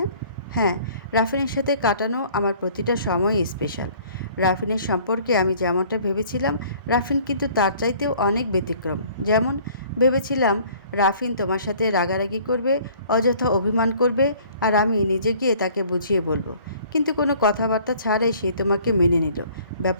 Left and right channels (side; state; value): both; inverted; correlation -0.54